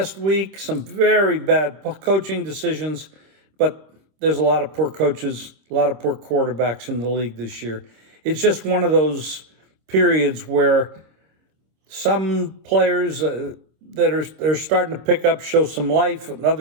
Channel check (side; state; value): left; late; 26 ms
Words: week, some very bad coaching decisions, but there's a lot of poor coaches, a lot of poor quarterbacks in the league this year. It's just one of those periods where some players that are starting to pick up show some life, and